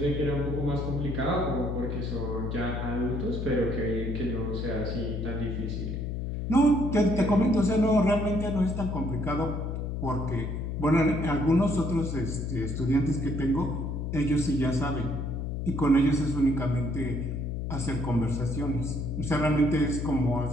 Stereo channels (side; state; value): left; noise; hum, 3 dB below the sound